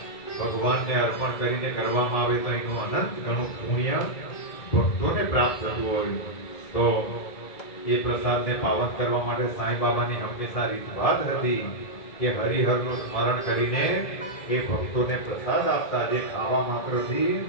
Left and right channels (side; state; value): right; late; 1.7 ms